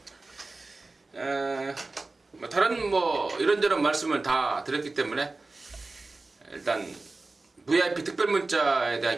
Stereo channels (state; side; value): quieter; left; 3.4 dB